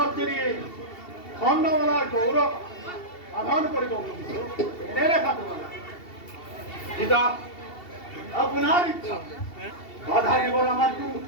কিনি চন্দ্ৰমালাৰ গৌৰৱ সাধন কৰিব খুজিছোঁ। এনেৰে থাকিব লাগে পিতা, আপোনাৰ ইচ্ছা বাধা দিবৰ আমাৰতো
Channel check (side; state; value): right; late; 2.7 ms